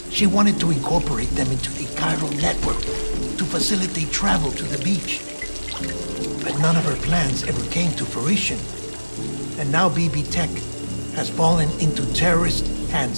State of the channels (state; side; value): inverted; both; correlation -1.00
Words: She wanted to incorporate them into the chiral network to facilitate travel to the beach. But none of her plans ever came to fruition. And now BB Tech has fallen into terrorist